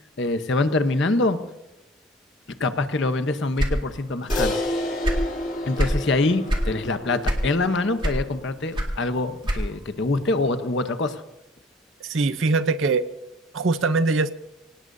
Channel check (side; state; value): both; normal; correlation 0.52